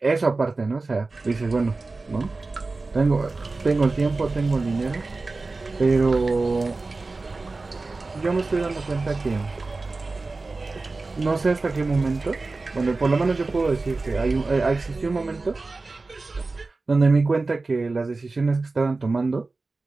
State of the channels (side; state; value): left; quieter; 3.6 dB